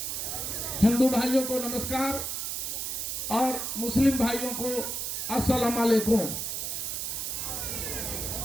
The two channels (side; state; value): right; noise; hiss, 3 dB below the sound